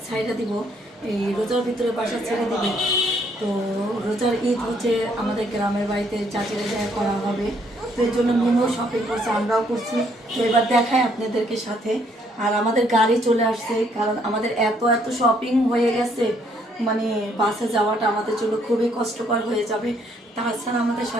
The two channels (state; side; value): normal; both; correlation 0.68